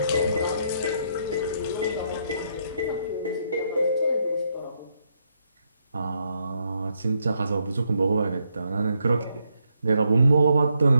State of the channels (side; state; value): both; inverted; correlation -0.76